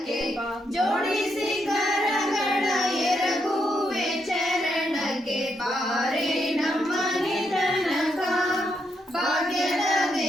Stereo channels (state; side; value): normal; both; correlation 0.79